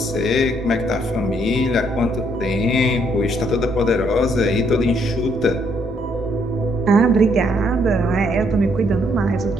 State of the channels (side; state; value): both; normal; correlation 0.70